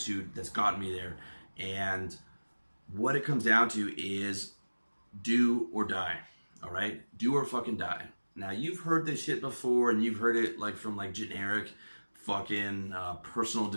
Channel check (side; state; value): both; inverted; correlation -1.00